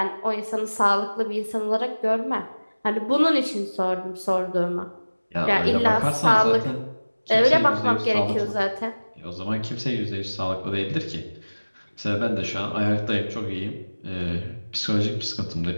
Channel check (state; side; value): inverted; both; correlation -1.00